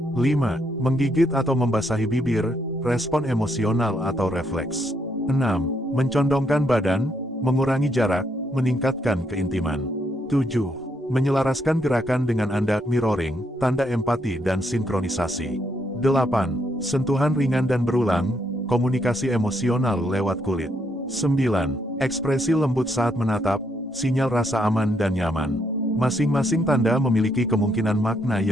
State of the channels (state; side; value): normal; both; correlation 0.74